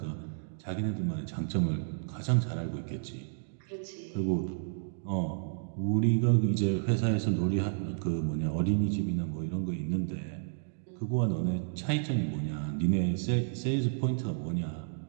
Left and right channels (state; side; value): silent; left; digital silence